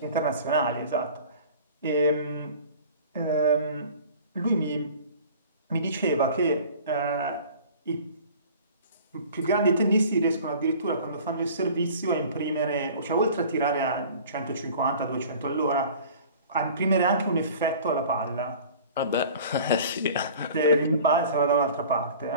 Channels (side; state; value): both; inverted; correlation -0.45